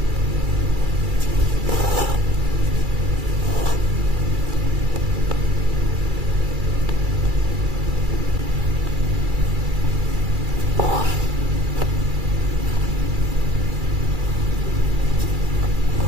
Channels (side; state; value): left; late; 2.3 ms